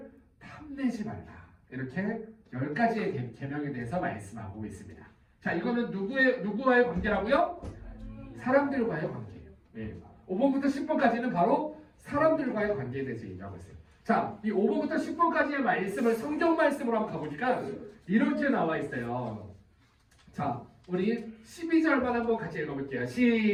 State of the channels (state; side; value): identical; both; correlation 1.00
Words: 탐내지 말라. 이렇게 10가지의 계명에 대해서 말씀하고 있습니다. 자, 이거는 누구와의 관계라고요? 사람들과의 관계예요. 네. 5번부터 10번까지는 바로 사람들과의 관계에 대해서 얘기하고 있어요. 자, 이 5번부터 10번까지의 말씀을 성경 말씀으로 한번 가보니까 이렇게 나와 있어요. 자, 우리 12절만 한번 같이 읽어볼게요.